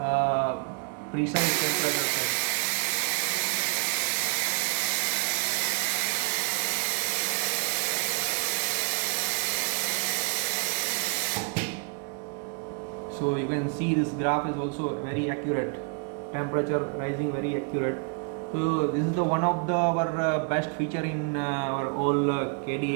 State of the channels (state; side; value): quieter; left; 36.3 dB